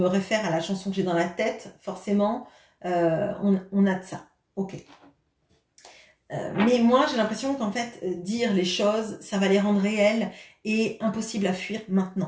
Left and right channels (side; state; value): both; identical; correlation 1.00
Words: réfère à la chanson que j'ai dans la tête, forcément, on a de ça. Ok. Mais moi, j'ai l'impression qu'en fait, dire les choses, ça va les rendre réelles et impossible à fuir